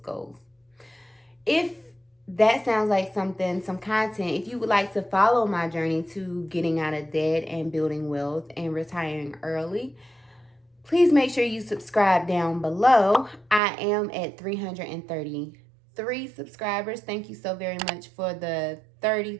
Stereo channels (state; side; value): drops out; left; at 13.6 s